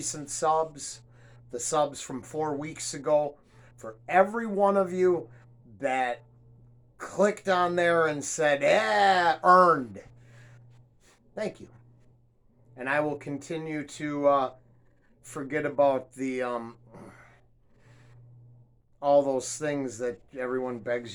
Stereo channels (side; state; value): both; identical; correlation 1.00